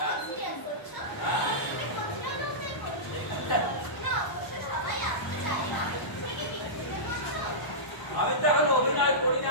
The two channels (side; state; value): right; late; 1.0 ms